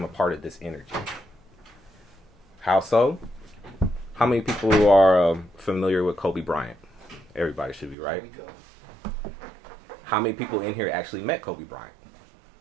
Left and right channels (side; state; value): left; drops out; at 8.0 s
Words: a part of this energy. How so? How many people are familiar with Kobe Bryant? Everybody should be, right? How many people in here actually met Kobe Bryant?